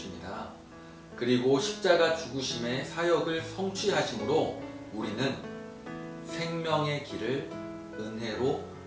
그리고 십자가 죽으심의 사역을 성취하심으로 우리는 생명의 길을 은혜로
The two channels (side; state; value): both; identical; correlation 1.00